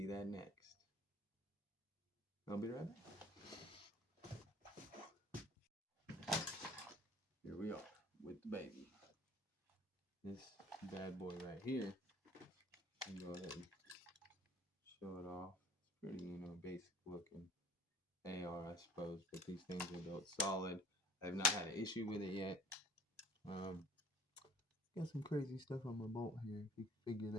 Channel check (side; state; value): both; normal; correlation 0.50